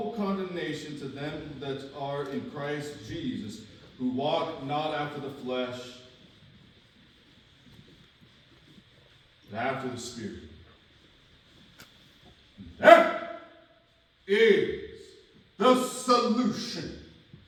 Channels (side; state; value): both; identical; correlation 1.00